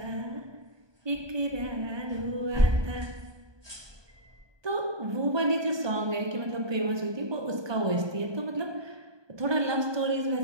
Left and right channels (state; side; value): late; left; 1.2 ms